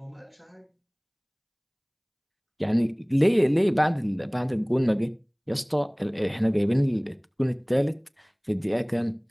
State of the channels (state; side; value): identical; both; correlation 1.00